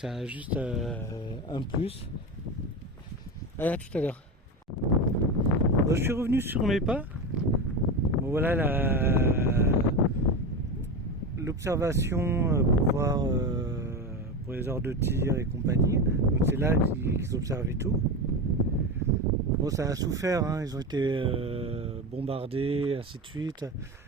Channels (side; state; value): both; normal; correlation 0.20